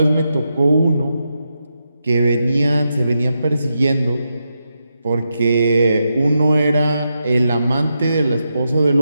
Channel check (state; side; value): inverted; both; correlation -0.85